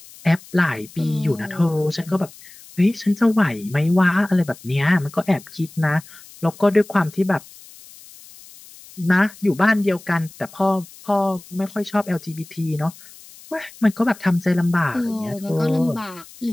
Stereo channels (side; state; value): left; noise; hiss, 21 dB below the sound